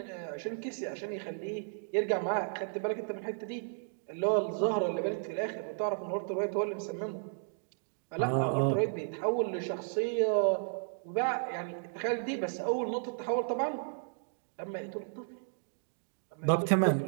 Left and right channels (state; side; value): silent; left; digital silence